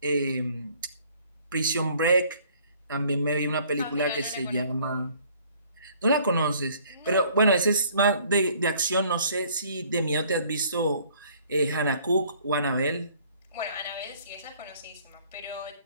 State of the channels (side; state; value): both; inverted; correlation -0.58